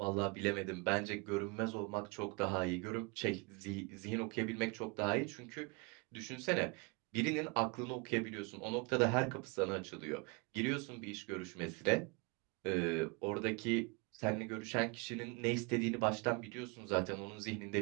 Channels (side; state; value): left; quieter; 30.6 dB